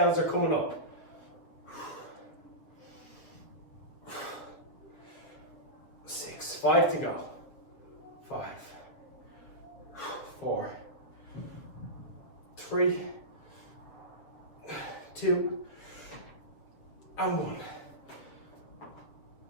are coming up. 6. 5 to go. 5, 4, 3, 2, and 1.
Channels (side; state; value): right; late; 7.4 ms